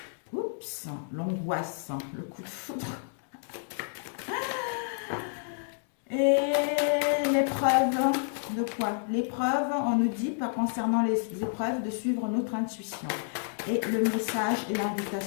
Oups, l'angoisse, le coup de foudre. Et l'épreuve de quoi? L'épreuve, on nous dit, concernant les épreuves, de suivre notre intuition. Et le message et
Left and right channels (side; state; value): right; silent; digital silence